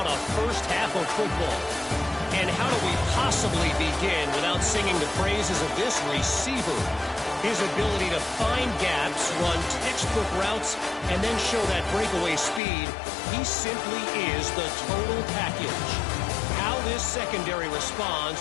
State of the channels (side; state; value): right; drops out; at 12.6 s